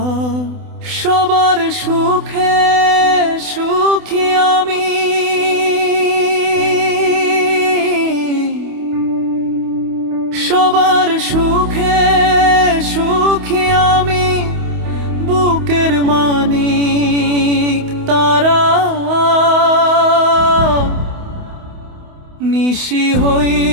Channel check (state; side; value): late; left; 28 ms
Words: সবার সুখে সুখী আমি, সবার সুখে সুখী আমি, বুকের মানিক তারা। নিশি